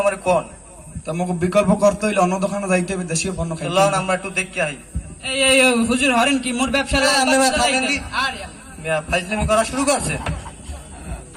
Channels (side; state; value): both; identical; correlation 1.00